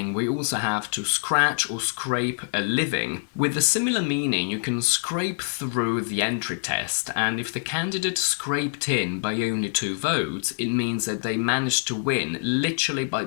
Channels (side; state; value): right; silent; 62 dB below the other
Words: we also have to scratch or scrape a living. With a similar meaning, you can scrape through the entry test, and if the candidate scraped in by only 2 votes, it means that they managed to win literally by